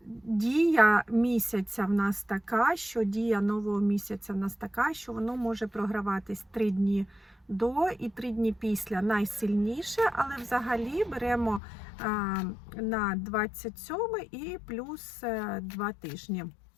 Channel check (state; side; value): drops out; right; at 11.6 s